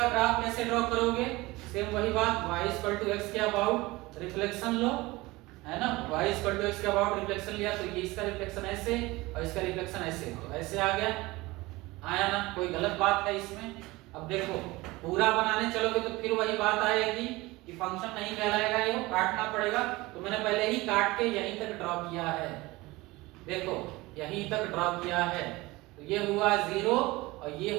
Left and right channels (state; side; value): quieter; left; 21.0 dB